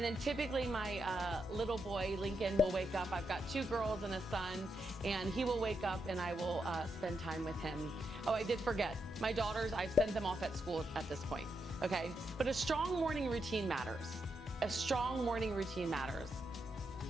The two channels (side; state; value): both; normal; correlation 0.83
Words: then typically my little boy, Lincoln, will wake up. I've got 2 girls and a son, and he will wake up and I will spend time with him. Oh, I did forget. My daughters, I've sent them off at school at this point, okay? But a strong morning routine matters. A strong morning routine matters.